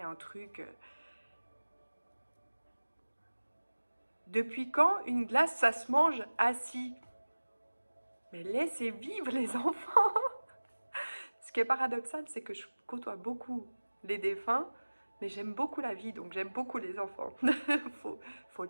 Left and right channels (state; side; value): inverted; both; correlation -1.00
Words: truc. Depuis quand une glace, ça se mange assis? Mais laissez vivre les enfants. Ce qui est paradoxal, c'est que je côtoie beaucoup les défunts, mais j'aime beaucoup la vie, donc j'aime beaucoup les enfants. faut